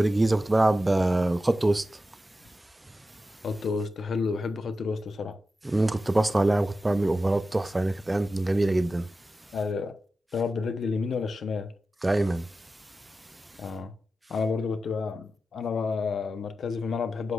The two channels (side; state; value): both; normal; correlation 0.92